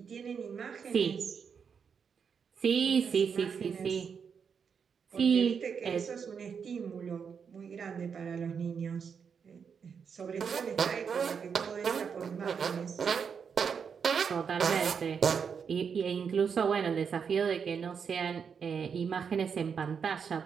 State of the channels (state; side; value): quieter; left; 6.5 dB